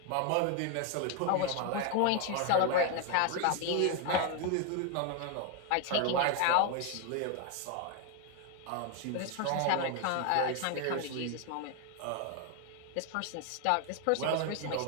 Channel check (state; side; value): different; both; correlation 0.01